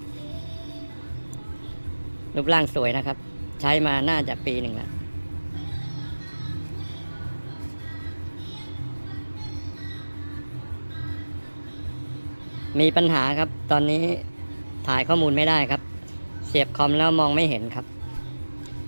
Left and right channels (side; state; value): both; inverted; correlation -1.00